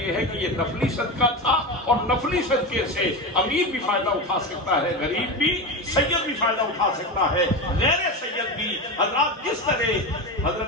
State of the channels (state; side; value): normal; both; correlation 0.20